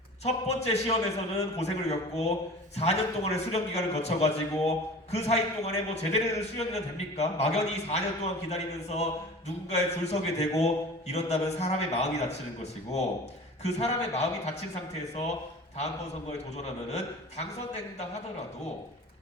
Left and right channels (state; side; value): normal; both; correlation 0.39